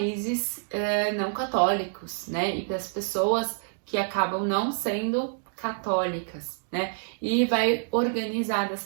não católicos, né? E para as pessoas que acabam não sendo católicas, né? E vai organizar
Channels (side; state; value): left; silent; digital silence